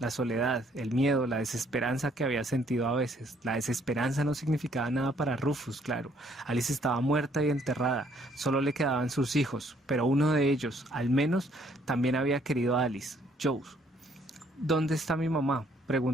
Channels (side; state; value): both; normal; correlation 0.65